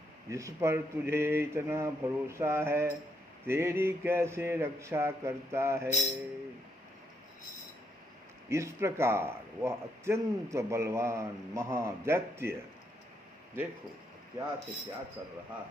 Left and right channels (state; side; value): normal; both; correlation 0.76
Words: जिस पर तुझे इतना भरोसा है, तेरी कैसे रक्षा करता है। इस प्रकार वह अत्यंत बलवान महादैत्य, देखो क्या से क्या कर रहा